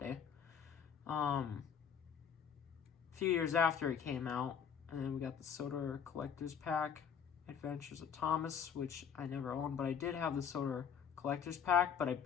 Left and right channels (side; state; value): right; quieter; 7.5 dB